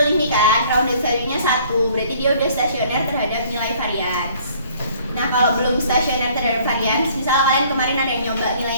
ini kan, rounded value-nya 1. Berarti dia udah stasioner terhadap nilai varians. Nah, kalau belum stasioner terhadap varians, misal kalian kemarin ada yang nyoba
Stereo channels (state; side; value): inverted; both; correlation -0.57